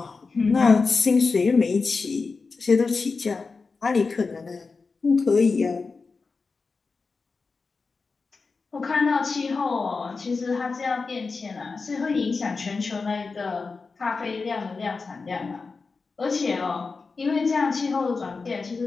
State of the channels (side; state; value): right; quieter; 4.4 dB